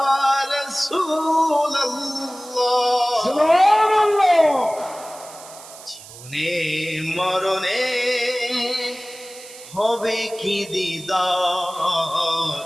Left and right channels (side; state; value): right; noise; hiss, 17 dB below the sound